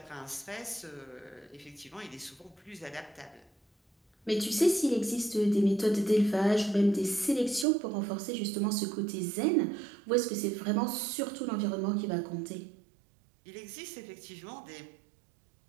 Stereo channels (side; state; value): left; drops out; at 7.7 s